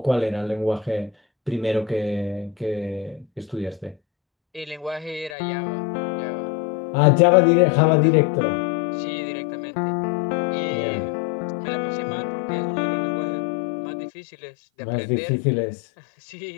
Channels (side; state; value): right; drops out; at 5.4 s